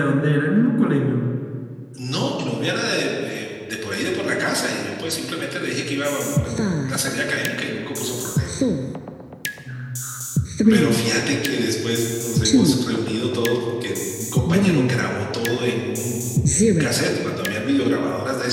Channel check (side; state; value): both; identical; correlation 1.00